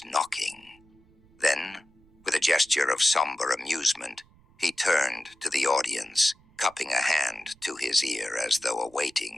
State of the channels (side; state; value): right; noise; rumble, 29 dB below the sound